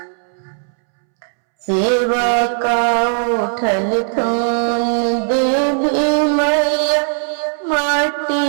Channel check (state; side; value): silent; left; 68 dB below the other